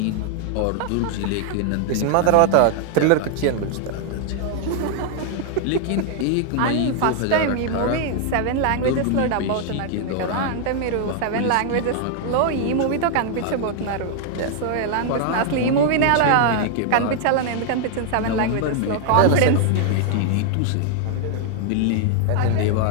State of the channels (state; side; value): different; both; correlation 0.00